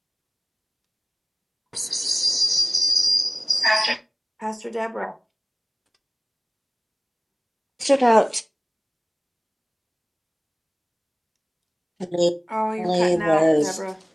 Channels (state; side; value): identical; both; correlation 1.00